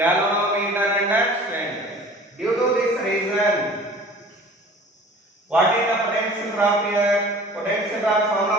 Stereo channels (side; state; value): both; normal; correlation 0.45